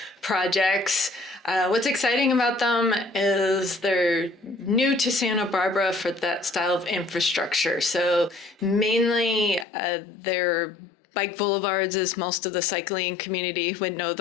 projects. What's exciting about them is they're new to Santa Barbara for that style of infrastructure. So mainly they're bike boulevards, as most of the cycling community would know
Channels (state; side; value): drops out; right; at 9.7 s